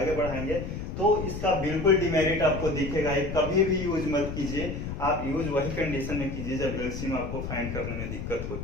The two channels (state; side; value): noise; left; rumble, 6 dB below the sound